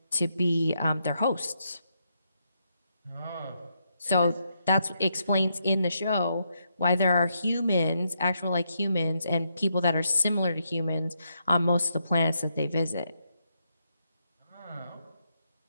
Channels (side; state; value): both; inverted; correlation -0.80